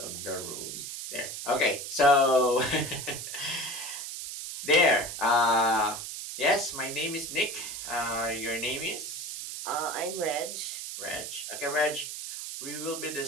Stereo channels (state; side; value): noise; right; hiss, 7 dB below the sound